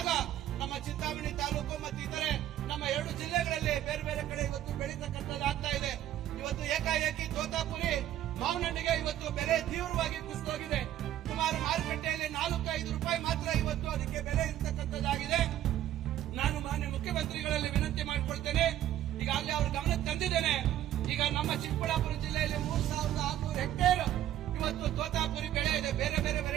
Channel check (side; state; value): left; quieter; 12.2 dB